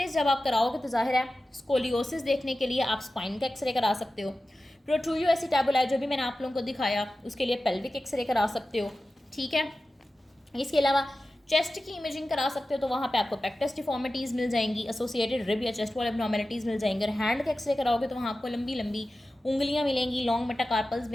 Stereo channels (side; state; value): both; normal; correlation 0.94